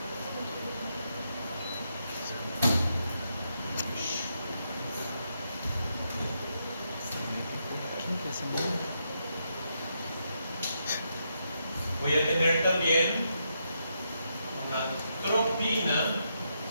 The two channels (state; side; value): inverted; both; correlation -0.81